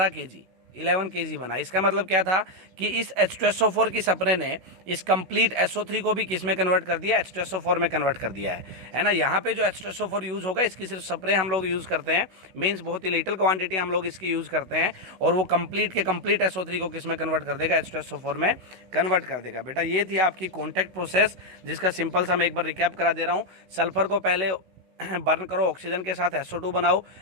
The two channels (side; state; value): left; late; 16 ms